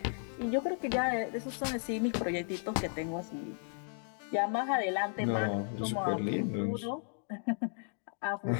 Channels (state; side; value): silent; right; 55 dB below the other